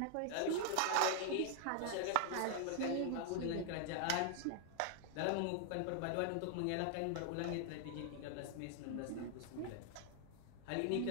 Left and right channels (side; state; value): both; different; correlation 0.00